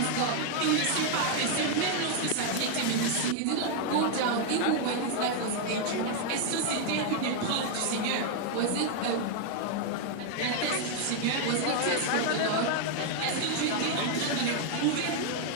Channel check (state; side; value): different; both; correlation 0.00